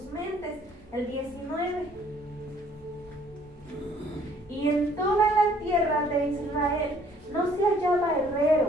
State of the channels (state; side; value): normal; both; correlation 0.60